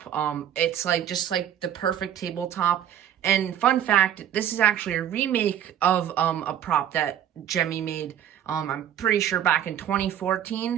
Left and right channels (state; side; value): quieter; left; 10.2 dB